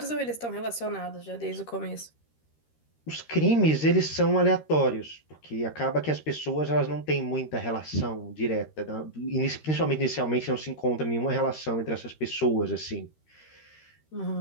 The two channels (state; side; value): late; right; 13 ms